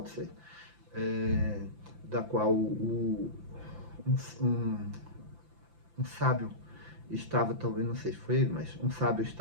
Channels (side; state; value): left; late; 5.8 ms